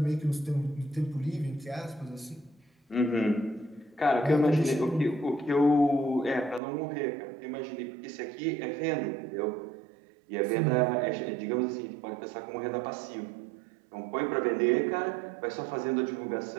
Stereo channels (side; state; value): left; drops out; at 6.6 s